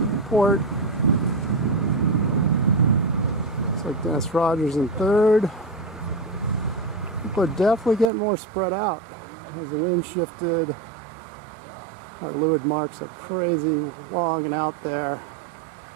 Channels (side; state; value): left; drops out; at 8.1 s